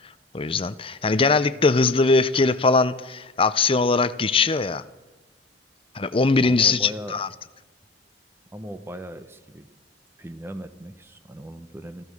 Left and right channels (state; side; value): quieter; right; 3.5 dB